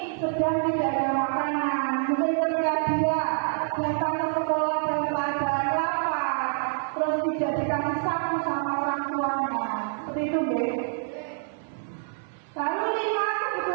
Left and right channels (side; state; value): left; silent; 60 dB below the other